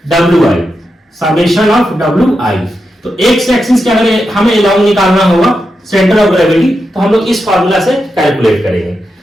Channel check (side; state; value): both; normal; correlation 0.87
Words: Wi, summation of Wi। तो एक्स एक्सिस के अगर हमें अलाउंग निकालना होगा सेंटर ऑफ ग्रेविटी, तो हम लोग इस फार्मूला से कैलकुलेट करेंगे।